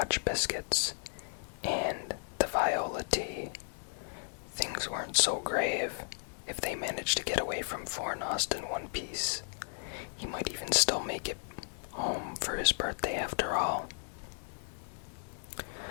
biscuits, and the viola tea. Things weren't so grave. If they managed to get away from Fornost in one piece, he might even still make it home for his birthday after all.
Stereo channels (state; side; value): silent; right; digital silence